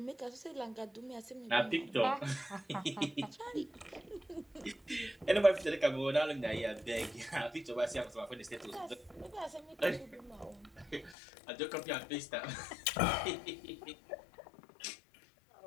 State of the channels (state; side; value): drops out; right; at 11.2 s